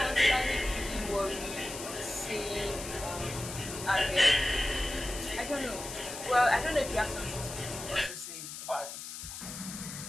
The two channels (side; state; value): left; noise; hiss, 9 dB below the sound